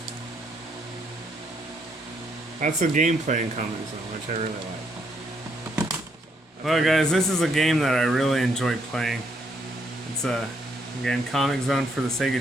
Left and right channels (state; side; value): normal; both; correlation 0.73